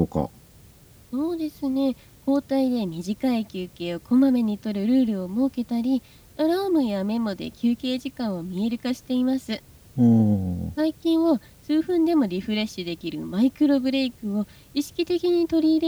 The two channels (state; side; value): identical; both; correlation 1.00